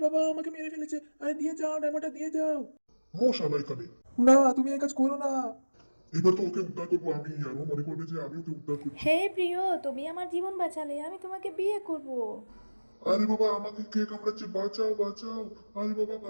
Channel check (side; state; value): both; inverted; correlation -1.00